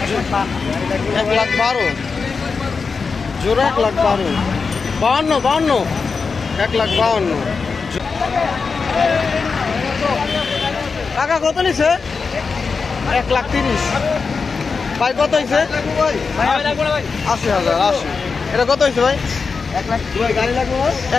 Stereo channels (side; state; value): right; quieter; 4.9 dB